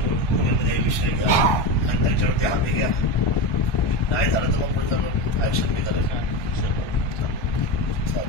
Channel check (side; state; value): right; late; 1.2 ms